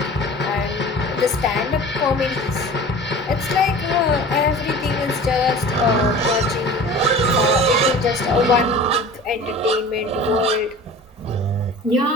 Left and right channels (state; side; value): normal; both; correlation 0.40